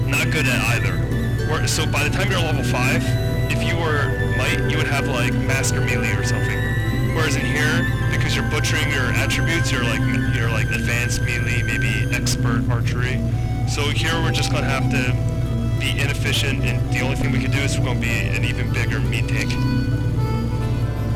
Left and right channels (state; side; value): identical; both; correlation 1.00